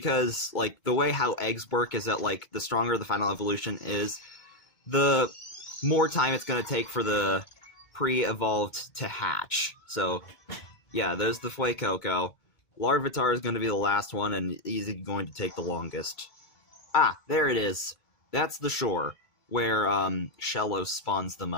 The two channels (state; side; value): late; right; 2.2 ms